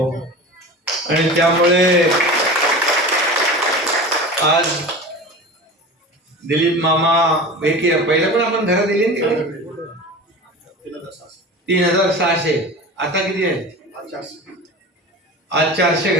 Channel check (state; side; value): normal; both; correlation 0.33